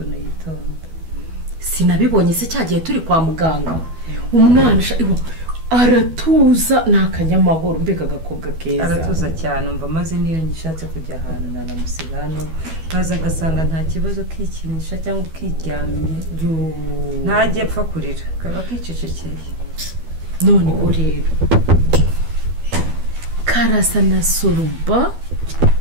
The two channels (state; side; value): late; left; 12 ms